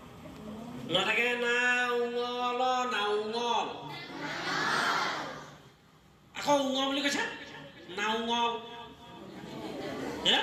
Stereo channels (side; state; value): both; identical; correlation 1.00